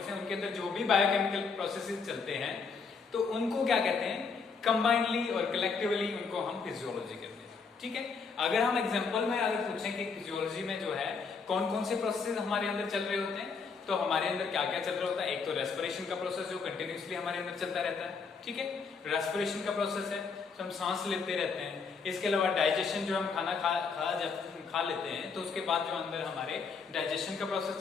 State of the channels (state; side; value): quieter; right; 5.2 dB